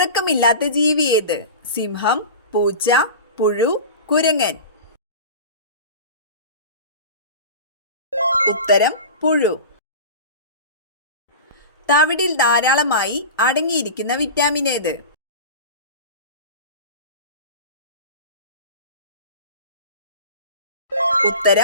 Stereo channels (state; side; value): inverted; both; correlation -0.32